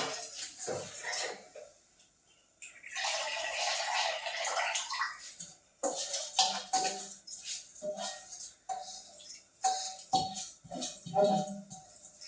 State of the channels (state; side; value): identical; both; correlation 1.00